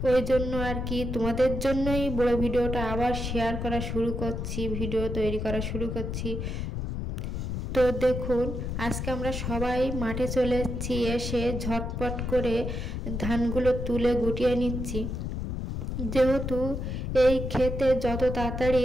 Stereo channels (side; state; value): left; noise; rumble, 3 dB below the sound